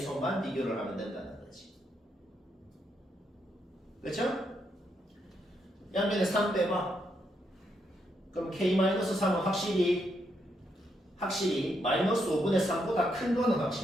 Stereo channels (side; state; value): both; normal; correlation 0.79